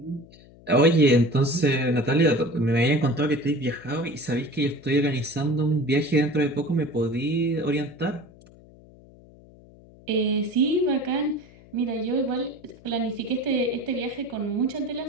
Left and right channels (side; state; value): left; noise; hum, 24 dB below the sound